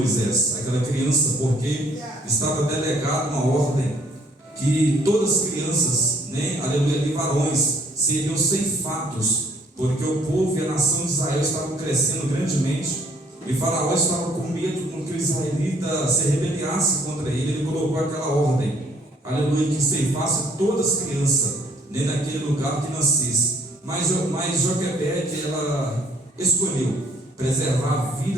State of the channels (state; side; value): normal; both; correlation 0.62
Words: aquela criança, porque estava delegada uma ordem que todas as crianças, né, aleluia, e varões, seriam ceifados, porque o povo e a nação de Israel estavam crescendo grandemente, e Faraó estava com medo com que o israelita se rebeliasse contra ele. Ele colocou aquela ordem, aleluia, que ceifasse todas as crianças, né, naquele lugar que nascesse. Mas Joquebede, ela escolheu preservar a